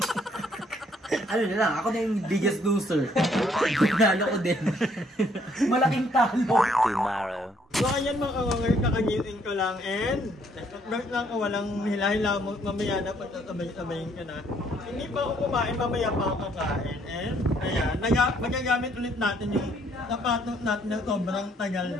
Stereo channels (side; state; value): both; normal; correlation 0.66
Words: Ano na lang, ako na yung biggest loser. Nalo ko din. Malaking talo. Tomorrow. So ayan mga kawanger, kakagising ko lang and nag lang ako, walang hila-hila mo, mamaya na pagtatabay-tabayin ka na. Hindi pa ako kumain, mamaya pa ako kakain. And ayan, magagamit ulit natin yung sapatos natin na sobrang tagal